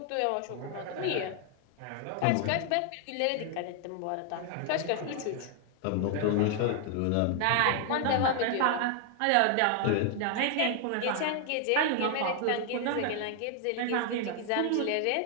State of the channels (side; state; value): both; different; correlation 0.00